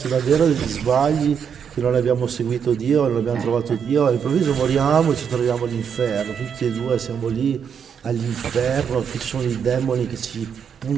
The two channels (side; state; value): left; quieter; 7.3 dB